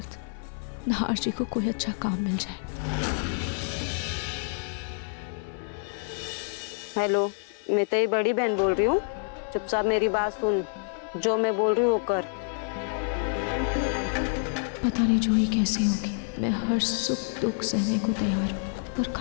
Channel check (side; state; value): right; silent; 55 dB below the other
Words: नहार जी को कोई अच्छा काम मिल जाए। हेलो, मैं तेरी बड़ी बहन बोल रही हूँ। चुपचाप मेरी बात सुन, जो मैं बोल रही हूँ वो कर। पता नहीं जूही कैसी होगी, मैं हर सुख दुख सहने को तैयार हूँ, पर